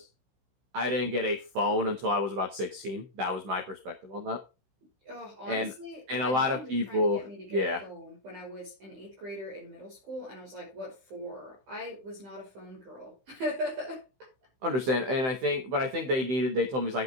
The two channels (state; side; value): late; left; 16 ms